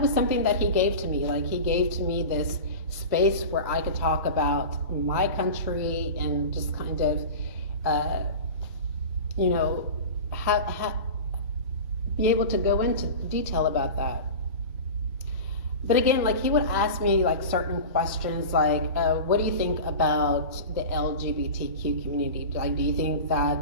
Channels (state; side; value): inverted; both; correlation -0.30